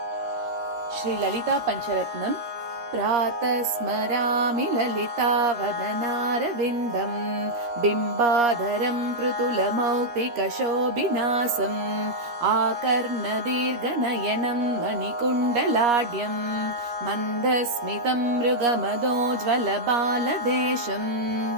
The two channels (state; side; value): late; left; 13 ms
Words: पञ्चरत्नम्। प्रातः स्मरामि ललितावदनारविन्दम् बिम्बाधरं पृथुलमौक्तिकशोभिनासम् आकर्णदीर्घनयनं मणिकुण्डलाढ्यं मन्दस्मितं मृगमदोज्ज्वलबालदेशम्